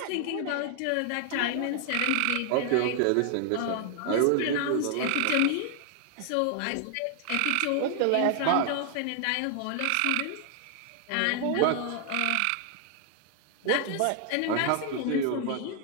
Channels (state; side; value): different; both; correlation 0.00